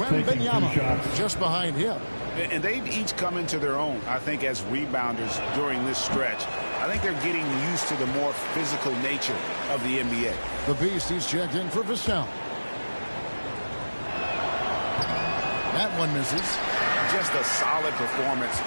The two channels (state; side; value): inverted; both; correlation -1.00